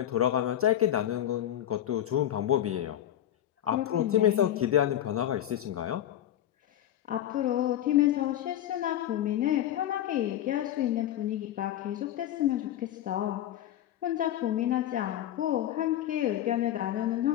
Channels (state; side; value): quieter; right; 11.8 dB